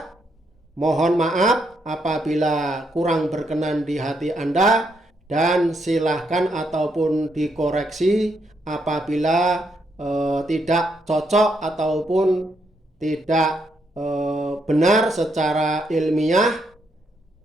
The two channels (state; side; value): normal; both; correlation 0.77